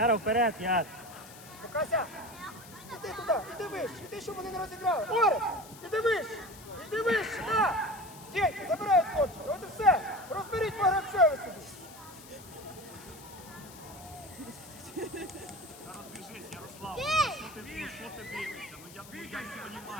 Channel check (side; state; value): left; noise; hiss, 18 dB below the sound